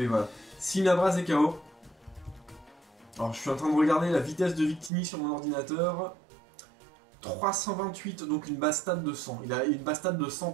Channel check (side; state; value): left; drops out; at 4.9 s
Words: voilà, Simiabraz est KO. Alors je suis en train de regarder la vitesse de Victini sur mon ordinateur. 328, donc une base stat de 100. Il a une base stat de 100